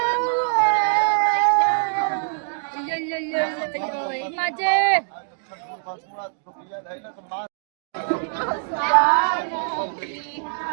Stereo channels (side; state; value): left; silent; digital silence